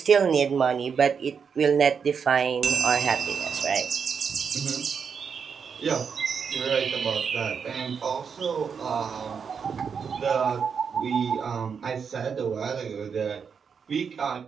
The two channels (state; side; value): quieter; left; 6.4 dB